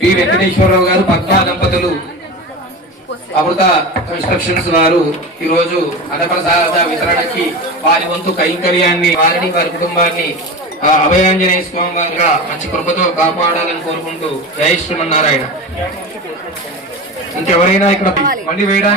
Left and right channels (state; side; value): normal; both; correlation 0.27